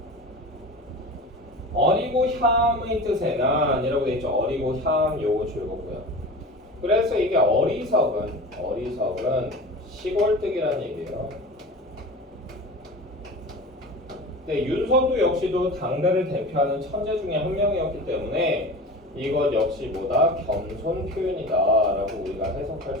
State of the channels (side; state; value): both; normal; correlation 0.33